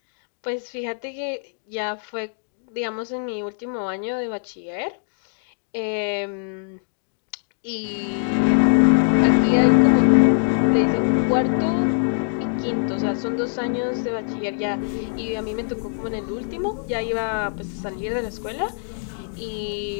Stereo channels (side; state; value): right; silent; digital silence